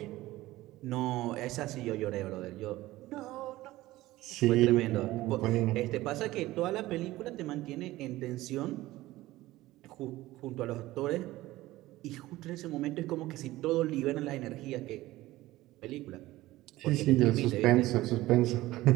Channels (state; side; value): quieter; left; 17.3 dB